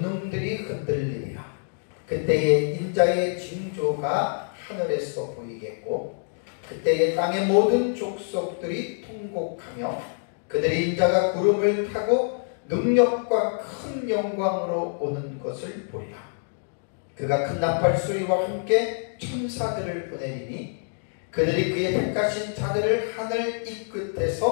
흔들리리라. 그때에 인자의 징조가 하늘에서 보이겠고 그때에 땅의 모든 족속들이 통곡하며 그들의 인자가 구름을 타고 능력과 큰 영광으로 오는 것을 보리라. 그가 큰 나팔 소리와 함께 천사들을 보내리니 그들이 그의 택하신 자들을 하늘 이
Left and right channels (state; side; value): silent; right; digital silence